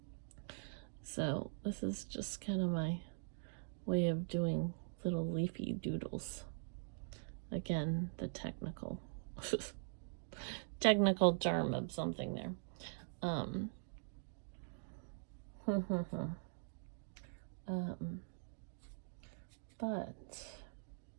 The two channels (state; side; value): silent; left; digital silence